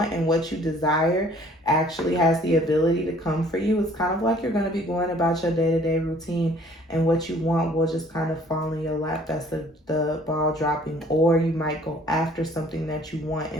and what you desire actually has the ability to come for you. It's kind of like you're going to be going about your day-to-day routine, and what you want will just kind of fall in your lap. That's the ball dropping. Or you might go after something that you want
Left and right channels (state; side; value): normal; both; correlation 0.56